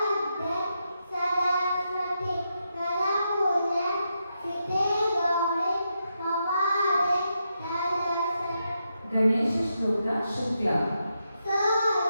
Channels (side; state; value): both; inverted; correlation -0.84